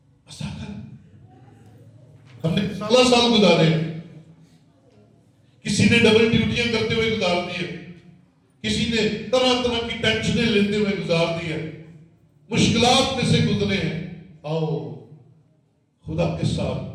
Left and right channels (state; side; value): identical; both; correlation 1.00